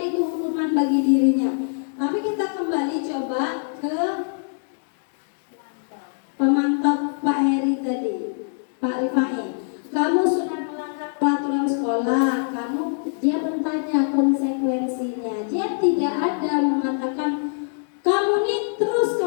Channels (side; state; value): right; silent; digital silence